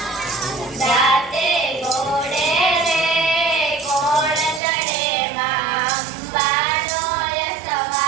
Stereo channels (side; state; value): left; drops out; at 4.6 s